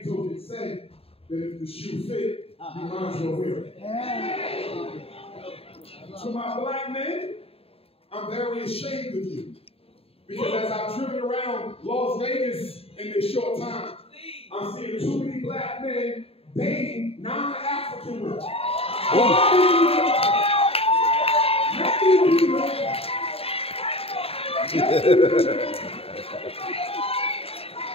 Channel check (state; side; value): late; right; 0.28 ms